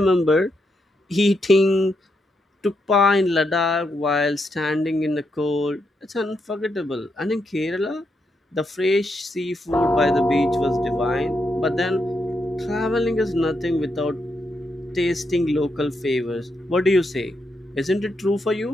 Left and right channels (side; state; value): both; normal; correlation 0.81